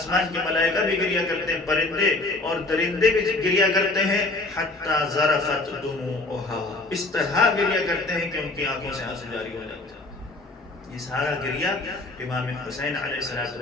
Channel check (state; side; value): quieter; right; 3.0 dB